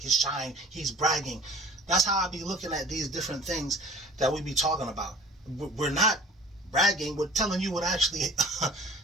his shine, he's bragging. That's how I be looking at these different things that we be talking about. We're not bragging, we're telling you what actually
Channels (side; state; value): both; normal; correlation 0.45